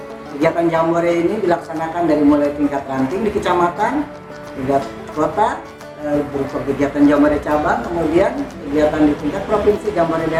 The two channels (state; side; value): identical; both; correlation 1.00